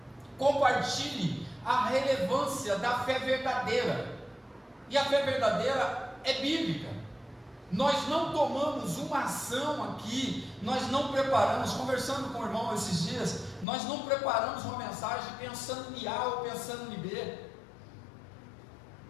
Compartilhe a relevância da fé verdadeira. E a fé verdadeira é bíblica. Nós não tomamos uma ação aqui, nós não preparamos, conversando com o irmão esses dias, nós não preparamos uma mensagem pensando em A ou pensando em B.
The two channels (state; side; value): drops out; right; at 13.7 s